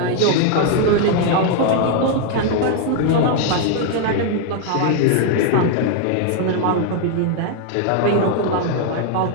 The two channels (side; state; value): both; different; correlation 0.00